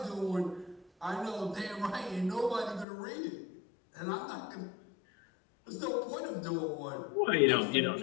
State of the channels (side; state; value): right; drops out; at 2.9 s